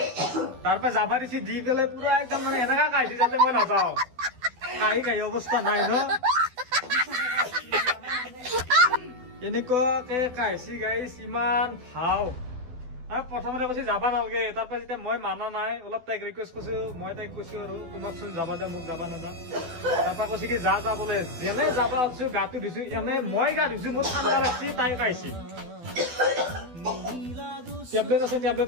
তাৰপৰা যাবা দিছি দি পেলাই পুৰা একদম মানে এনেকা কাহিছে যাতে মই নাযাওঁ কাহি অৱস্থা নাই ন এনেকুৱাকে কাহিছি গাইছ ইমান ভাও প্ৰথমতে কৈছে যাবা নালাগে তাৰপৰা যেতিয়া মই মানা নাই অলপ তাইক ৰিকুৱেষ্ট কৰিছো মই তাইক কৈছো আৰু তোমাকচোন যাবা দে মোক যাবা নেদা তাৰপৰা কৈছে কি যা যা বোলে যেনে যাবা আছো গাটো ধুইছো এনে মই গা ধুইছো মোৰ ঠাণ্ডা লাগছি তাই কাহিছি টেবলেট আছে টেবলেট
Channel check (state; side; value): late; left; 12 ms